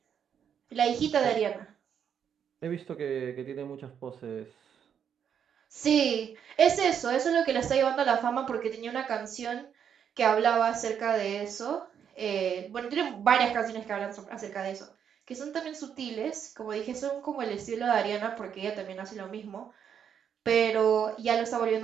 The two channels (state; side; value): quieter; left; 8.1 dB